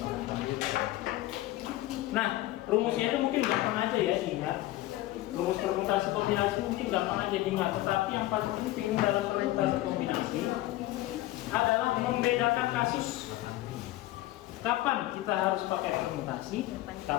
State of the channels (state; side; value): quieter; right; 16.4 dB